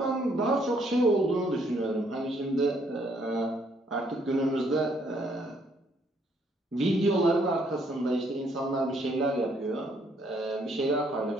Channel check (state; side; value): normal; both; correlation 0.68